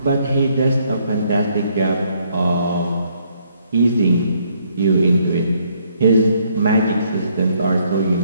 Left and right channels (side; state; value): both; inverted; correlation -0.70